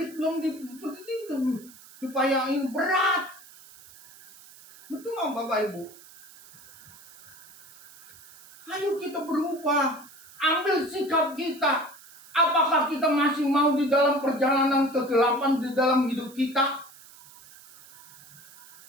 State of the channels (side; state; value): right; noise; hiss, 21 dB below the sound